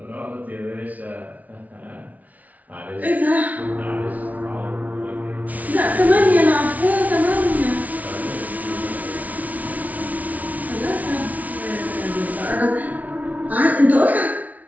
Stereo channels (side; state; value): left; late; 0.072 ms